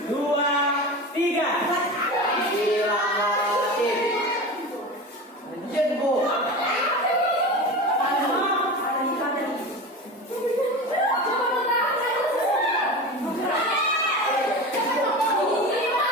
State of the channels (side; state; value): both; normal; correlation 0.28